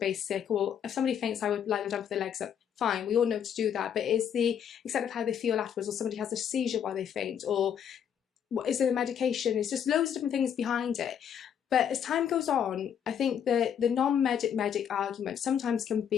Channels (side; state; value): right; quieter; 8.6 dB